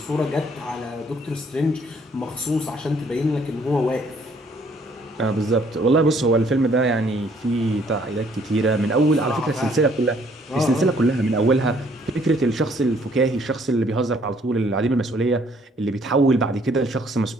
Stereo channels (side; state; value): both; normal; correlation 0.63